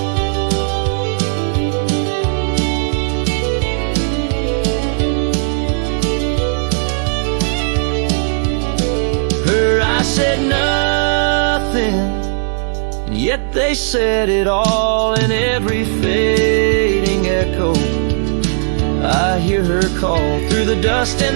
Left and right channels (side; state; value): left; silent; digital silence